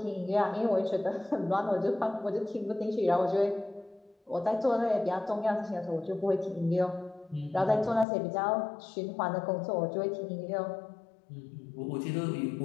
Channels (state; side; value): drops out; right; at 8.1 s